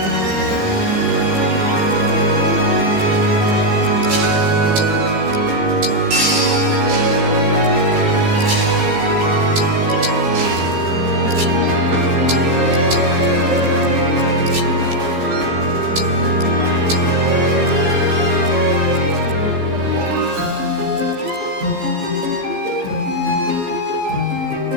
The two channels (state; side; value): late; left; 15 ms